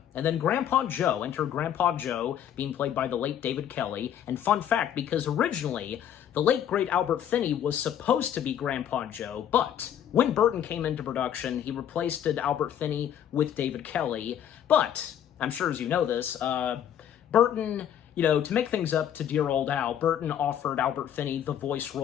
And then Grandpa Joe, enter Grandpa Joe, being played by the late David Kelly, and fun fact, because originally, the late, great Albert Finney was supposed to be Grandpa Joe, but when Burton came into production, he replaced Albert Finney with David Kelly. But, I'm sure as you know this, Burton, to make things up to dear old Al, Burton offered Albert Finney the voice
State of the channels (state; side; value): quieter; right; 9.9 dB